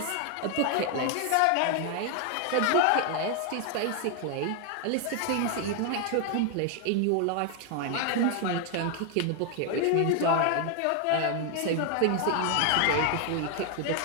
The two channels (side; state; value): both; different; correlation 0.00